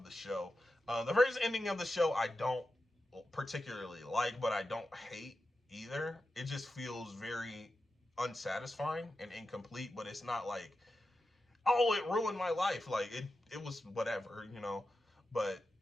the show. The first ending of the show I don't particularly like, but I don't hate either. It just feels very unsatisfying and incomplete, but it's not like, oh, it ruined my life. Like, it was whatever, But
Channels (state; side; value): normal; both; correlation 0.91